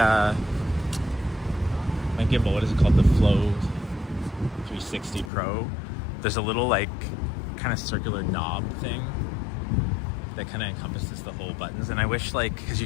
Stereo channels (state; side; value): drops out; right; at 5.3 s